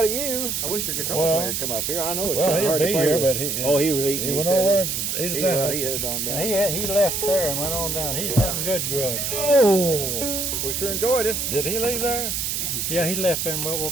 of you. I wish your guitar player would come up here. I know it's kind of hard to play here, with. But he was eating. He went over and ate his sandwich. He headed on down. He left there and went on down. He's hunting good grub. Oh, we sure enjoyed it. Did he leave there? Yeah, he left there and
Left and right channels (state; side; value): noise; right; hiss, 1 dB below the sound